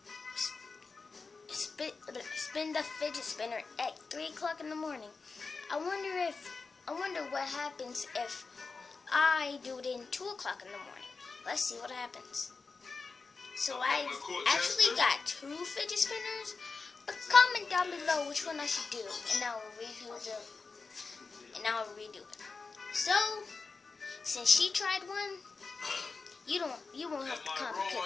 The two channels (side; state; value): right; quieter; 4.4 dB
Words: spin the fidget spinner at 3 o'clock in the morning. I wonder what happens if I do it in 2 o'clock in the morning. Let's see what happens. So I actually got 2 fidget spinners, but comment down below which one I should do, and I'll redo it. So since she tried one, you won't have to comment